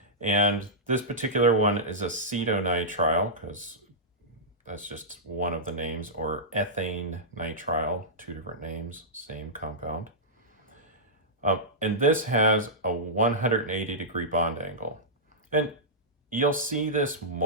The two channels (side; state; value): both; normal; correlation -0.14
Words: And this particular one is acetonitrile, because that's just one of the names, or ethane nitrile, two different names, same compound. And this has a 180 degree bond angle. And you'll see this